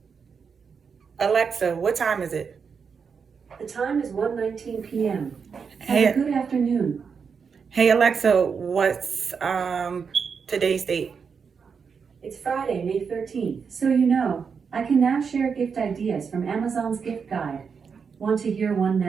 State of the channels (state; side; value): quieter; left; 6.0 dB